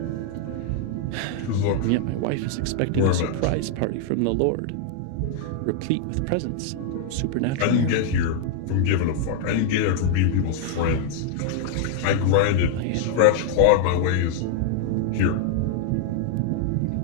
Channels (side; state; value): both; different; correlation 0.00